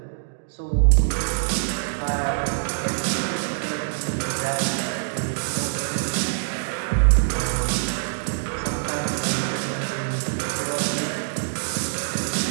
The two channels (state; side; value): silent; left; digital silence